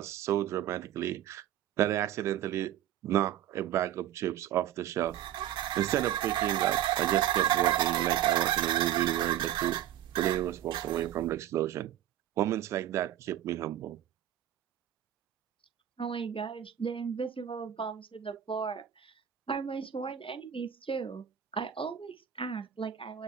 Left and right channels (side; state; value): left; quieter; 11.5 dB